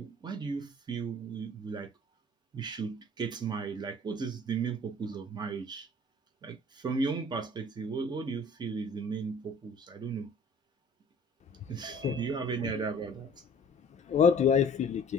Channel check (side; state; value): both; normal; correlation 0.50